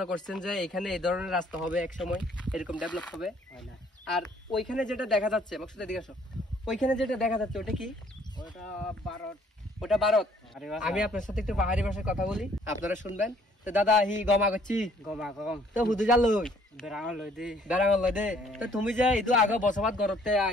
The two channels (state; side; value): normal; both; correlation 0.61